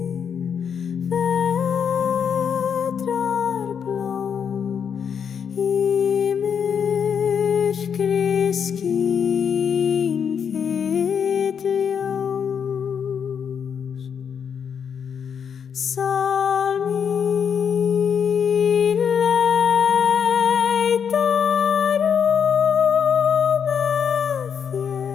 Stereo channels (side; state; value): right; quieter; 7.3 dB